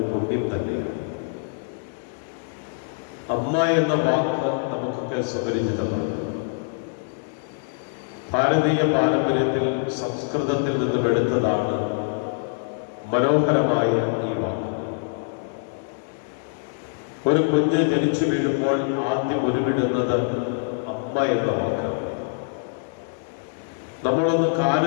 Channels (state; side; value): silent; right; digital silence